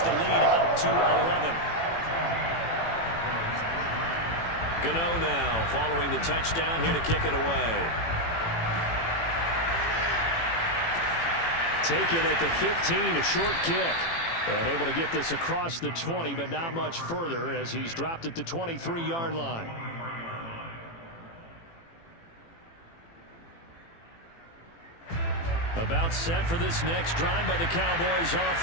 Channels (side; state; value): right; late; 18 ms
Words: the lead up to 11. Gano now following the touchdown here to kick it away. Taken at the 15, a short kick. And able to get this across the 20, but not much further as he's dropped it to 23-yard line. About set for this next drive by the Cowboys